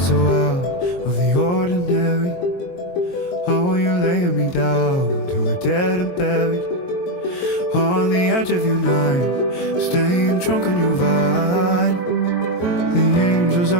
out of the ordinary. How are you laying me down to a dead and buried on the edge of your night, staying drunk on your vine. The angels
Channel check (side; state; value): right; late; 22 ms